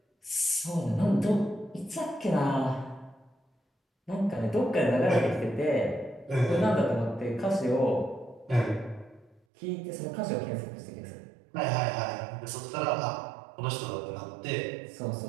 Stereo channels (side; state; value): left; drops out; at 9.4 s